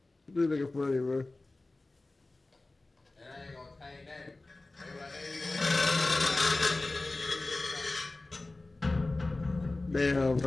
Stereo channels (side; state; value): right; quieter; 3.0 dB